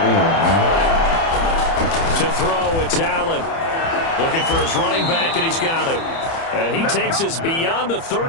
To throw, it's Allen. Looking for his running back, and he's got him. And he takes us beyond the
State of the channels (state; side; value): late; right; 30 ms